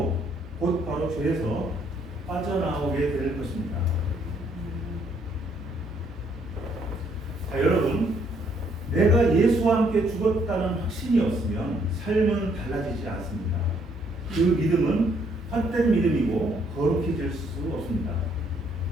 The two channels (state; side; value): normal; both; correlation 0.68